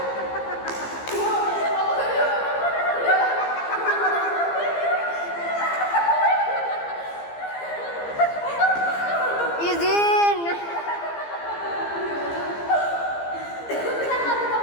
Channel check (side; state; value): right; late; 15 ms